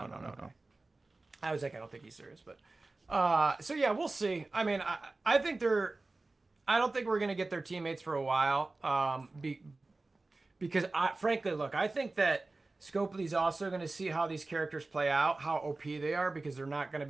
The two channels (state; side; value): quieter; left; 3.3 dB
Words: I was like, I don't think he's serious, but. So yeah, we'll see. I mean, I think I don't think we're gonna get their teammates for a while. because frankly, look, I think that Scopely's also going to see how these characters play out, how OP they are, because they're not going to